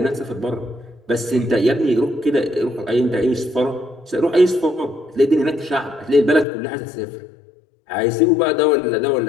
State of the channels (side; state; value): right; drops out; at 6.5 s